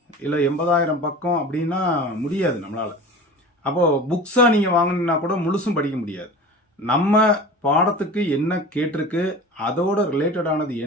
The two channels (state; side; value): normal; both; correlation 0.36